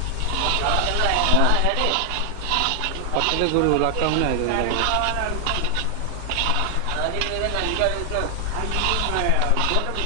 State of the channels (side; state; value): both; different; correlation 0.00